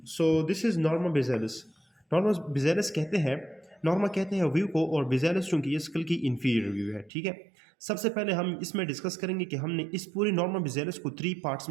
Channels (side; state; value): left; drops out; at 7.1 s